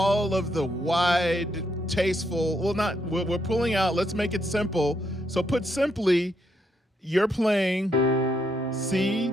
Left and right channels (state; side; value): normal; both; correlation 0.76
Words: of the wide, tasteful, we're pulling out, let's make it simple. So put simply, you're playing C,